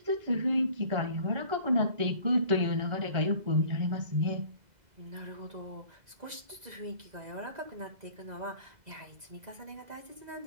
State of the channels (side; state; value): left; late; 2.0 ms